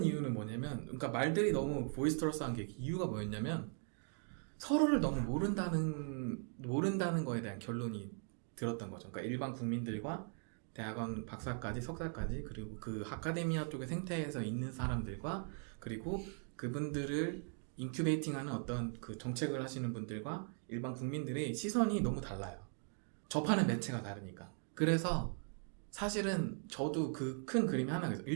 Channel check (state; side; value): silent; left; 51 dB below the other